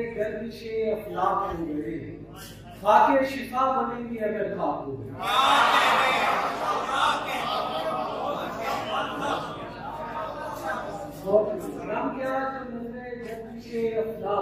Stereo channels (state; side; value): identical; both; correlation 1.00